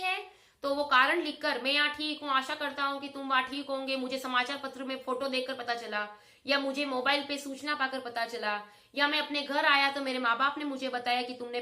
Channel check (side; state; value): both; identical; correlation 1.00